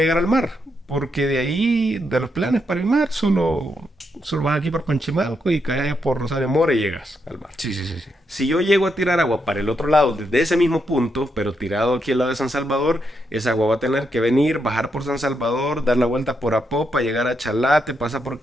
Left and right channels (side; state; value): both; normal; correlation 0.81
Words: llegar al mar, porque de ahí, de los planes para el mar, solo vas aquí por Panchimalco y caes allá por Rosario Mora y llegas al mar. Sí, sí, sí, sí. Si yo llego a tirar agua para el otro lado, desde ese mismo punto, pero tirado aquí al lado de San Salvador, esa agua va a tener que venir, bajar por San Salvador, dar la vuelta por Apopa, llegar a Chalate, pasa por